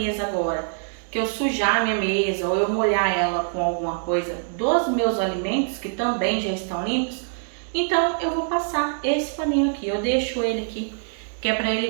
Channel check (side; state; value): left; silent; 63 dB below the other